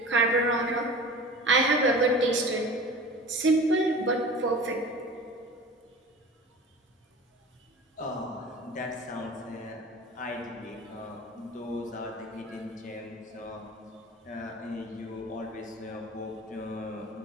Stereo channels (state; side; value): normal; both; correlation 0.38